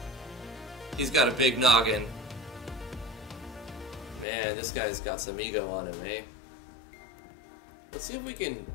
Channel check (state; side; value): drops out; right; at 4.2 s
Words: He's got a big noggin. Man, this guy's got some ego on him, eh? Let's see if we can